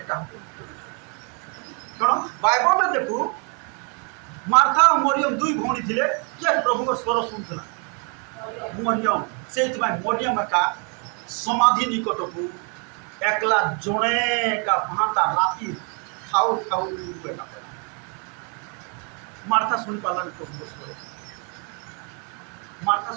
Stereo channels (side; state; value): left; quieter; 37.1 dB